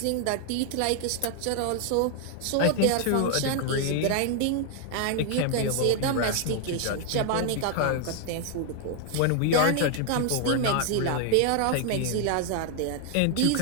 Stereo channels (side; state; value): both; different; correlation 0.00